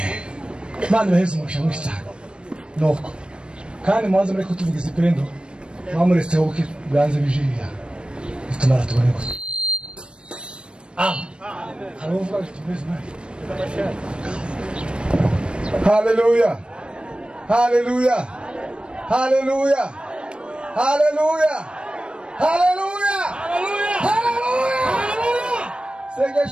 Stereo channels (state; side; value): late; left; 0.055 ms